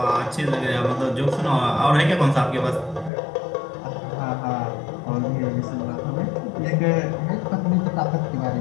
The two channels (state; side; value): drops out; right; at 3.1 s